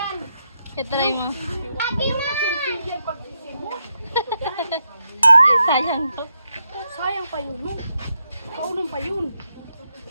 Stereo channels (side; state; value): both; inverted; correlation -0.83